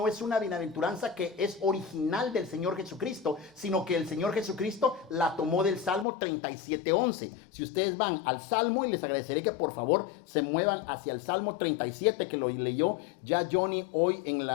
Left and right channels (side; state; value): right; drops out; at 6.1 s